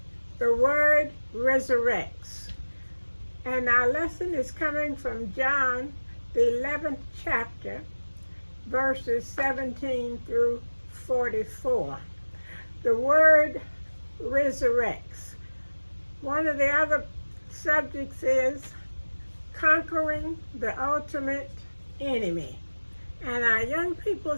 the word resurrects. And our lesson is coming from John, the 11th chapter, verses 17 through 44. The word resurrects. One of the other subjects is conquering the ultimate enemy. And our young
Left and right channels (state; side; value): inverted; both; correlation -1.00